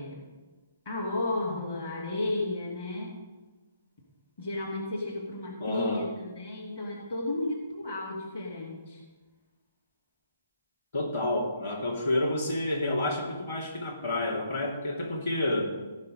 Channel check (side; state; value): both; inverted; correlation -0.73